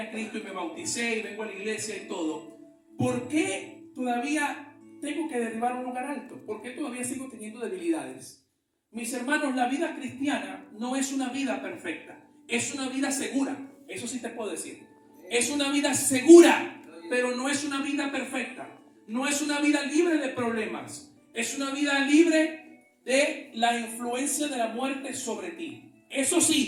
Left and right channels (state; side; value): identical; both; correlation 1.00